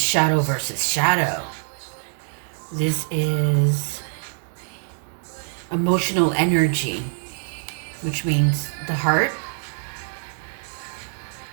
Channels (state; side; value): silent; left; digital silence